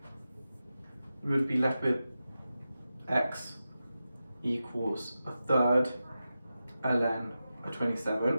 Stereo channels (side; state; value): both; inverted; correlation -0.92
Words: We would be left with x equals a third ln a